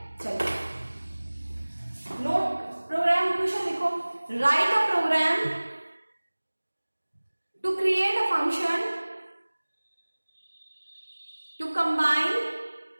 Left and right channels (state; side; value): inverted; both; correlation -1.00